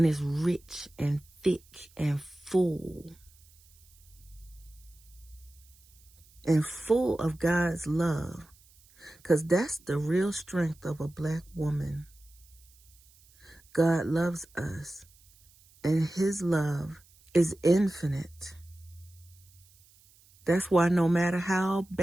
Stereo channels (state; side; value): noise; right; hiss, 28 dB below the sound